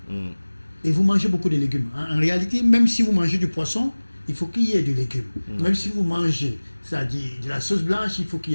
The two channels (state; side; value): inverted; both; correlation -1.00